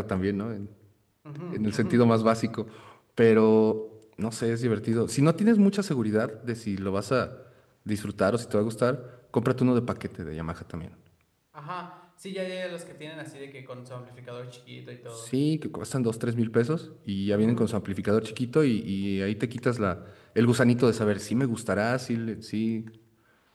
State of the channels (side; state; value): both; identical; correlation 1.00